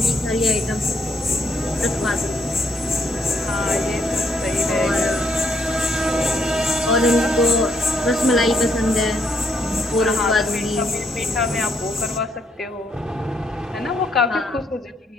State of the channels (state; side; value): normal; both; correlation 0.73